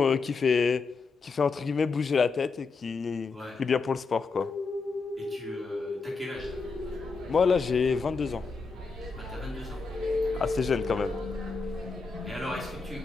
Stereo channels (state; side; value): quieter; right; 4.4 dB